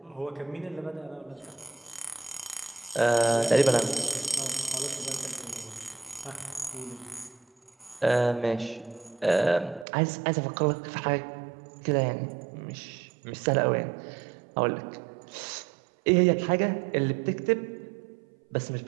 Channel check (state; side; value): drops out; left; at 9.9 s